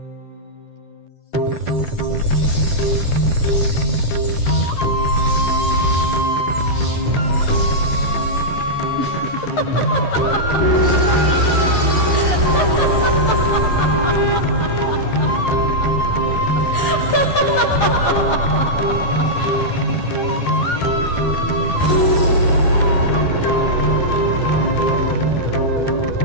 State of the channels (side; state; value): right; late; 11 ms